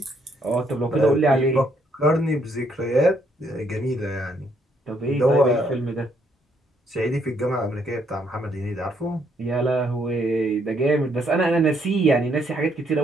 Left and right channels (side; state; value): both; normal; correlation 0.71